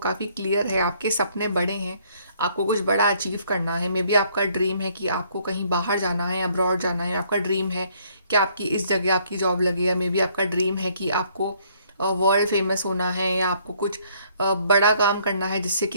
क्लियर है। आपके सपने बड़े हैं, आपको कुछ बड़ा अचीव करना है। मे बी आपका ड्रीम है कि आपको कहीं बाहर जाना है, अब्रॉड जाना है। आपका ड्रीम है कि आपकी इस जगह आपकी जॉब लगे, या मे बी आपका ड्रीम है कि आपको वर्ल्ड फेमस होना है, या आपको कुछ बड़ा काम करना है जिससे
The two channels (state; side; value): inverted; both; correlation -0.65